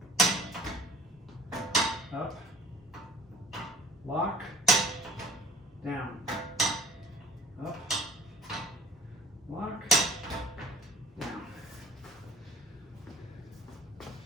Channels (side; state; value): both; normal; correlation 0.48